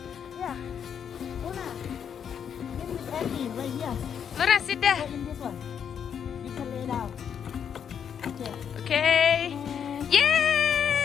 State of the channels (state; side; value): quieter; right; 8.0 dB